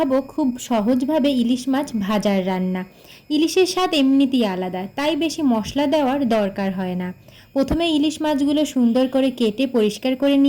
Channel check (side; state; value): both; identical; correlation 1.00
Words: খুব সহজভাবে ইলিশ মাছ ভাজার রান্না। ইলিশের স্বাদ এমনিতেই আলাদা, তাই বেশি মশলা দেওয়ার দরকার হয় না। প্রথমে ইলিশ মাছগুলো সুন্দর করে কেটে পরিষ্কার করে